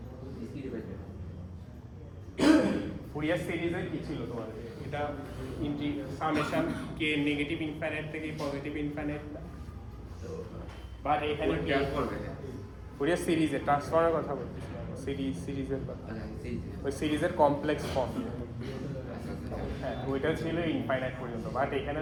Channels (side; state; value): both; identical; correlation 1.00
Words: ডিসক্রিট পেতে ফুরিয়ার সিরিজে কি ছিল তোমার, এটা সামেশন কে নেগেটিভ ইনফাইনাইট থেকে পজিটিভ ইনফাইনাইট, বাট এখানে কি করবে ফুরিয়ার সিরিজে ট্রান্সফর্মের কথা বলছি, সিরিজের কথা, ওই সিরিজের কমপ্লেক্স ফর্ম। হ্যাঁ, ওইটা ছিল ইনফাইনাইট পর্যন্ত, বাট এখানে